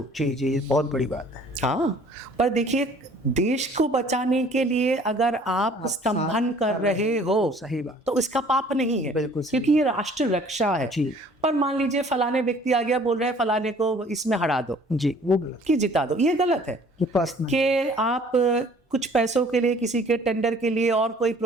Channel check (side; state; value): both; normal; correlation 0.54